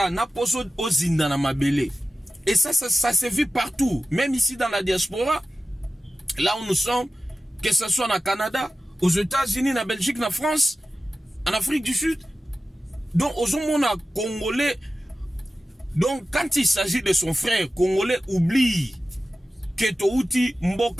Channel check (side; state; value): both; normal; correlation 0.95